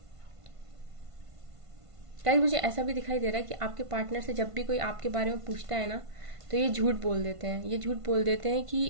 गाइस, मुझे ऐसा भी दिखाई दे रहा है कि आपके पार्टनर से जब भी कोई आपके बारे में पूछता है ना, तो ये झूठ बोल देते हैं। ये झूठ बोल देते हैं कि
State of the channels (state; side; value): late; left; 1.5 ms